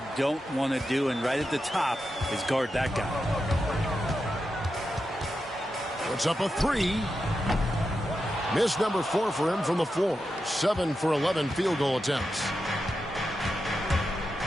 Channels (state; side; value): normal; both; correlation 0.89